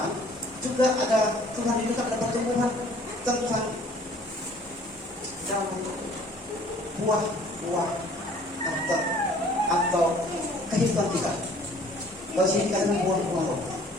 juga ada Tuhan rindukan ada pertumbuhan tentang dalam buah-buah atau kehidupan kita. Kalau sini dikatakan buah-buah roh,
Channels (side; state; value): both; normal; correlation 0.54